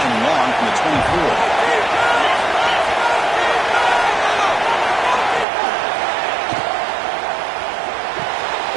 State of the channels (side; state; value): left; drops out; at 5.5 s